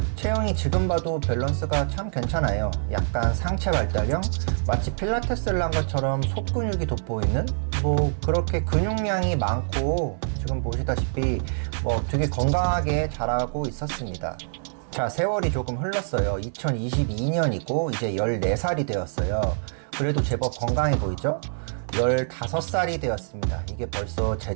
체형이 지금 봐도 밸런스가 참 괜찮아요. 약간 상체 발달형? 마치 필라테스를 한 것처럼 속근육이 돋보이는? 뭐 그렇게 근육량이 많고 지금 보시다시피 뭐 되게 건강하게 자라고 있었습니다. 자, 세월이 조금 흘렀어요. 2022년이고 이제 14살이 되었어요. 그래도 제법 건강해 보이죠? 15살이 되었습니다. 이게 벌써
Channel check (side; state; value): left; silent; 61 dB below the other